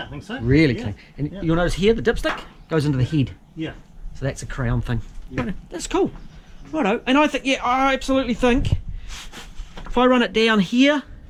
I think so. Really yeah. clean. And Yeah. you'll notice here, the dipstick goes into the head. Yeah. So that's a crown thing. Yeah. That's cool. Righto. And I think, yeah, I absolutely think if I run it down here,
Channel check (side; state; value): both; identical; correlation 1.00